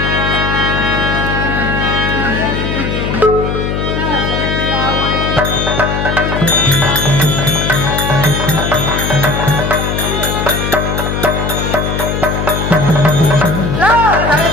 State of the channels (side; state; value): left; noise; hum, 2 dB below the sound